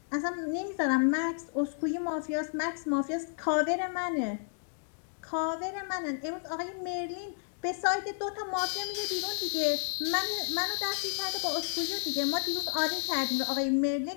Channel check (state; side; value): silent; right; digital silence